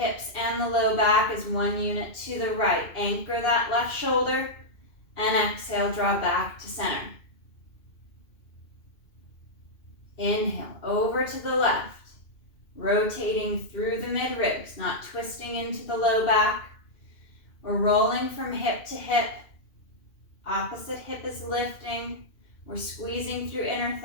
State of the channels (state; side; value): late; right; 2.6 ms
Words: and the low back as one unit to the right. Anchor that left shoulder, and exhale, draw back to center. Inhale, over to the left, rotating through the mid-ribs, not twisting into the low back. We're rolling from hip to hip. Opposite hip is lifting. We're squeezing through inner